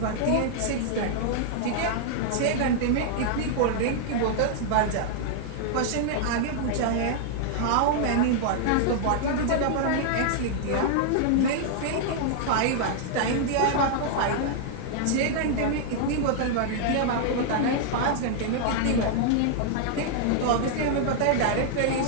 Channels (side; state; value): both; different; correlation -0.01